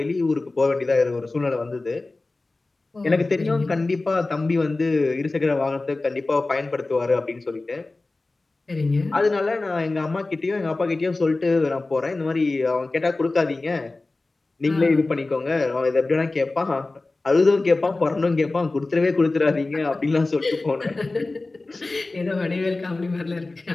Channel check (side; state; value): right; quieter; 3.2 dB